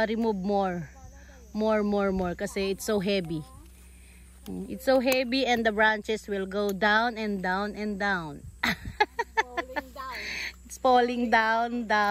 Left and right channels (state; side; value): identical; both; correlation 1.00